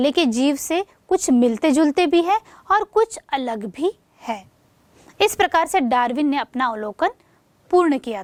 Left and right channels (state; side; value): identical; both; correlation 1.00